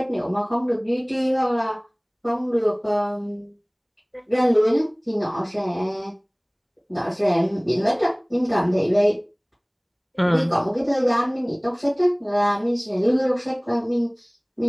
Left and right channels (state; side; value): identical; both; correlation 1.00